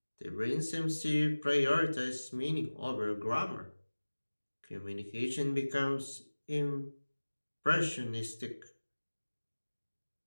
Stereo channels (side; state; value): both; inverted; correlation -1.00